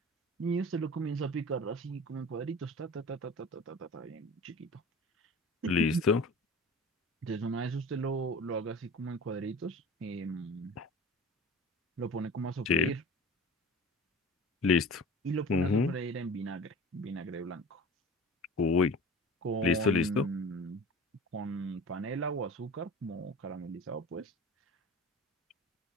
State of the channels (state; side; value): normal; both; correlation 0.39